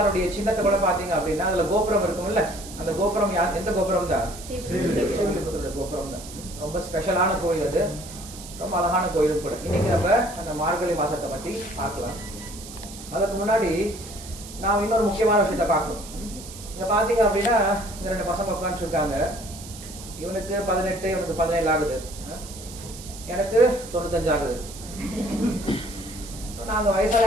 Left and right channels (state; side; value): noise; right; hiss, 14 dB below the sound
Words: சின்னத்தை கூட பாத்தீங்க அப்படின்னா அதுல கோபுரம் இருக்கும்ல, அந்த கோபுரம் எந்த கோபுரம் தான்? ஸ்ரீவில்லிபுத்தூருடைய கோபுரம் தான். ரொம்ப ஸ்பெஷலான கோயில் அது, ரொம்ப அழகான கோயிலும் கூட. இன்னைக்கு நம்ம அந்த மார்கழி மாசத்தை பத்தி பார்க்கலாம். அதுக்கு முன்னாடி நான் இன்னொரு முக்கியமான விஷயத்த பார்க்கணும். இங்க பாத்தீங்க அப்படின்னா இந்த 2 பசங்க உட்காந்துட்டு இருக்காங்க. இவனுக்கு 18, இவனுக்கு 17 ஆகுது, எனக்கு 95 ஆகுது. நாங்க